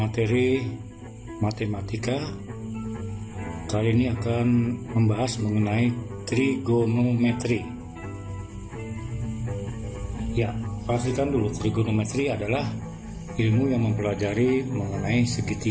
matematika. Kali ini akan membahas mengenai trigonometri. Ya, pastikan dulu, trigonometri adalah ilmu yang mempelajari mengenai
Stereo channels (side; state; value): both; identical; correlation 1.00